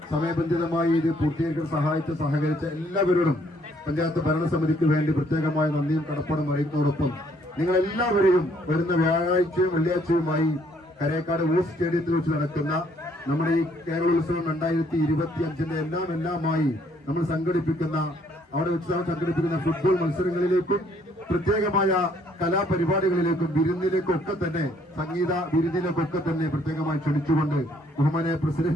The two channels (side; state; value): both; normal; correlation 0.66